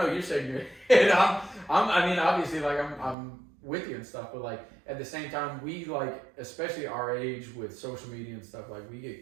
you're shaking your head. Obviously like I'm with you and stuff, but like at the same time we like, especially our age with social media and stuff, like we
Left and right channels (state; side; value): drops out; left; at 3.2 s